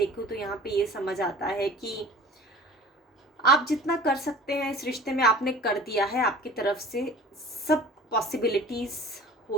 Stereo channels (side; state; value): both; normal; correlation 0.42